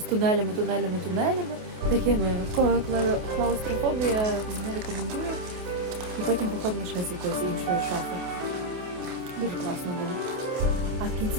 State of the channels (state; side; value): late; left; 28 ms